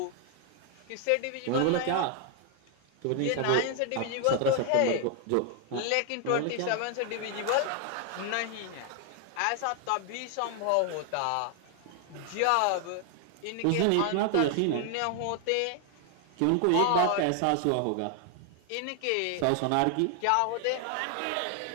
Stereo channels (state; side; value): different; both; correlation 0.00